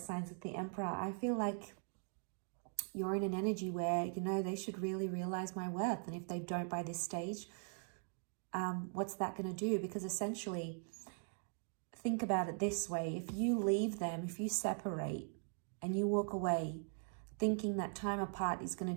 with the Emperor. I feel like you're in an energy where, you know, they should really realize my worth. And if they don't by this stage, what's that going to do? Because essentially, think about it this way. If you leave them, if you separate and you walk away thinking that time apart is going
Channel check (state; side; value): silent; left; 50 dB below the other